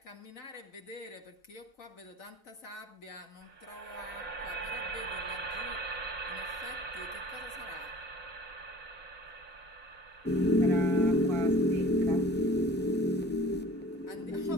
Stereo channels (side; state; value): both; normal; correlation 0.46